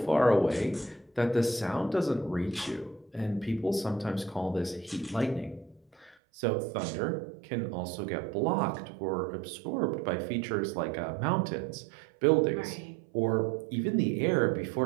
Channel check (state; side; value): drops out; left; at 6.2 s